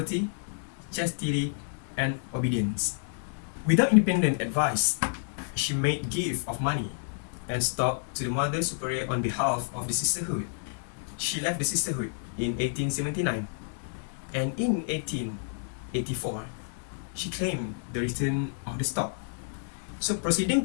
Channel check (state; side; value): silent; right; 58 dB below the other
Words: chastity, and obedience. Without independent advice, she made gift of money and stock to the Mother Superior on behalf of the sisterhood. She left the sisterhood in 1879, and in 1884, she claimed the return of the stock. So proceeding